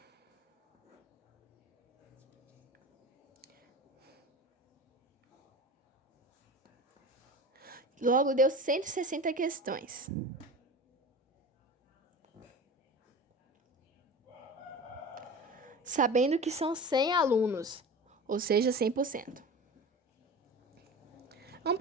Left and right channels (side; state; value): both; normal; correlation 0.33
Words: Logo, deu 160 questões. Sabendo que são 100 alunos, ou seja, 100%. Vamos